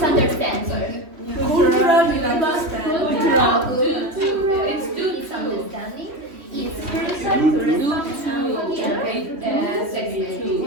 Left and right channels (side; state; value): left; late; 3.1 ms